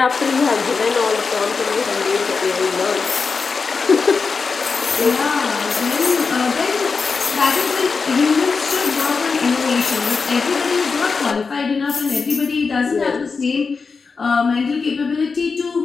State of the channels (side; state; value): right; quieter; 4.9 dB